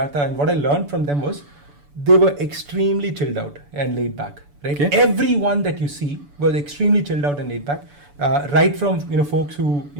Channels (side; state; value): left; late; 6.9 ms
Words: and what I learned from them, was they were extremely chilled out and laid back. Right, everyone that you see was extremely chilled out and laid back. Right from folks who